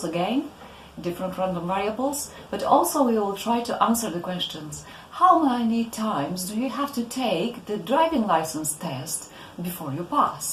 again, different random variables, but also we will try to answer the questions: how many times do you have to take the driving license test before you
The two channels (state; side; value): identical; both; correlation 1.00